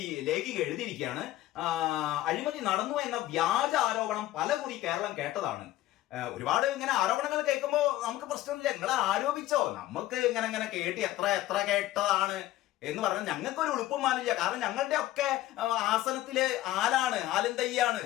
ലേഖിക എഴുതിയിരിക്കുകയാണ്, അഴിമതി നടന്നു എന്ന വ്യാജ ആരോപണം പലകുറി കേരളം കേട്ടതാണ്. ഒരുപാട് ഇങ്ങനെ ആരോപണങ്ങൾ കേൾക്കുമ്പോൾ നമുക്ക് പ്രശ്നമില്ല, നിങ്ങൾ ആരോപിച്ചോ, നമുക്ക് ഇങ്ങനെ കേട്ടി എത്ര കേട്ടതാണ് എന്ന് പറഞ്ഞാൽ ഞങ്ങൾക്കൊരു ഉളുപ്പുമാനില്ല. കാരണം ഞങ്ങളുടെ ഒക്കെ ആസനത്തില് ആലും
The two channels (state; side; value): quieter; right; 15.3 dB